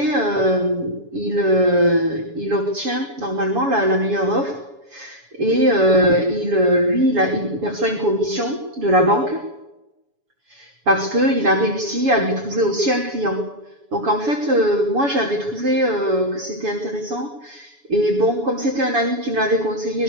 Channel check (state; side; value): late; left; 7.1 ms